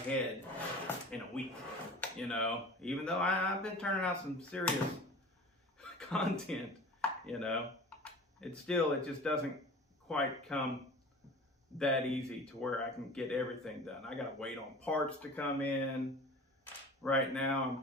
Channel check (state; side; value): normal; both; correlation 0.39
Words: in a week, you know, even though I've been turning out some serious content, you know. It just doesn't quite come that easy to where I can get everything done. I gotta wait on parts to come in. Right now, I'm